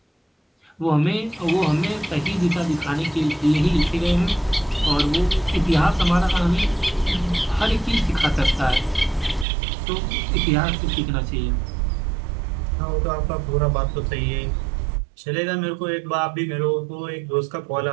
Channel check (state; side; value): drops out; left; at 9.5 s